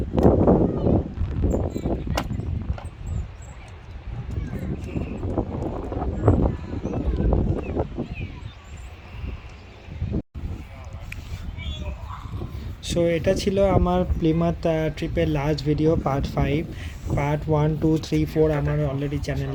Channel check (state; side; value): identical; both; correlation 1.00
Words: সো এটা ছিল আমার প্লিমাথ ট্রিপের লাস্ট ভিডিও, পার্ট 5। পার্ট 1, 2, 3, 4 আমার অলরেডি